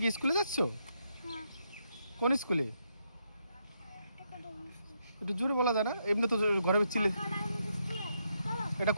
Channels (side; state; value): both; inverted; correlation -0.79